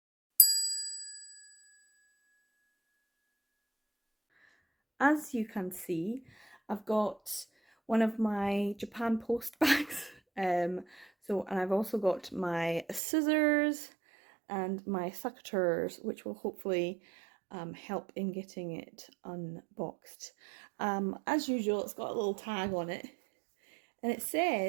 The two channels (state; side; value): drops out; left; at 13.0 s